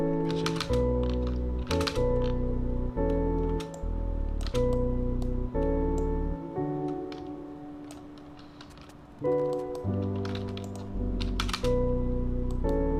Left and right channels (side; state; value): both; identical; correlation 1.00